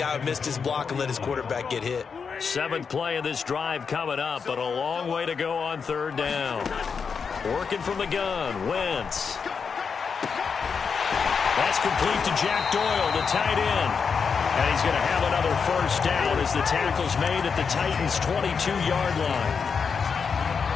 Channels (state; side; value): quieter; right; 5.9 dB